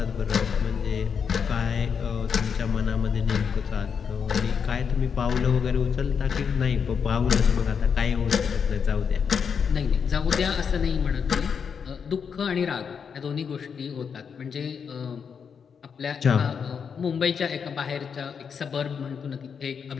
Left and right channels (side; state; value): right; quieter; 6.6 dB